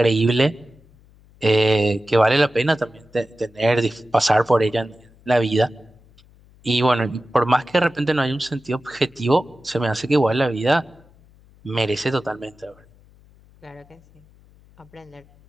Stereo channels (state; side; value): noise; left; hum, 28 dB below the sound